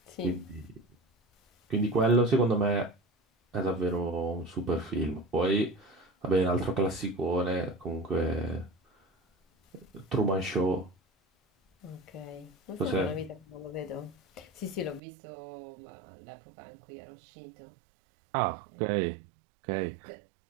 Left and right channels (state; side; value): drops out; left; at 15.0 s